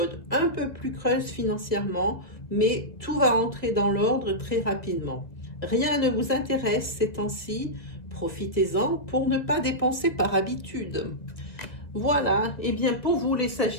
un peu plus creuse financièrement, mais tout va entrer dans l'ordre très rapidement. Rien ne vous intéresse ces temps-ci, profitez-en pour ne pas dépenser par habitude. Voilà, et bien pour vous les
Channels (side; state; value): right; late; 1.9 ms